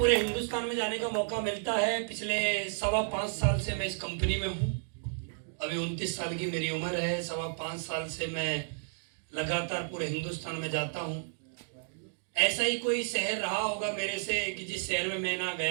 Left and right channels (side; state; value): left; silent; digital silence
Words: हिंदुस्तान में जाने का मौका मिलता है। पिछले 5.25 साल से मैं इस कंपनी में हूँ। अभी 29 साल की मेरी उम्र है। 5.25 साल से मैं लगातार पूरे हिंदुस्तान में जाता हूँ। ऐसा ही कोई शहर रहा होगा मेरे से कि जिस शहर में मैं ना